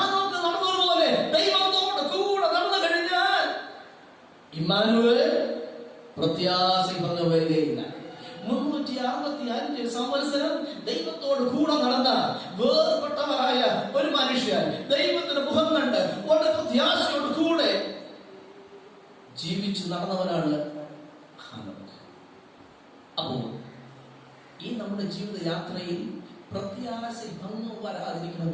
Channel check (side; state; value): both; identical; correlation 1.00